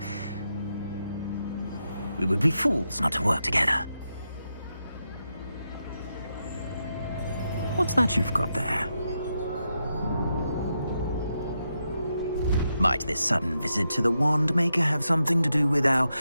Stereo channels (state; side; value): inverted; both; correlation -0.85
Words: We would be fools not to work together. What's that you've got there? Might this sudden visit to the Wand Maker have something to do with our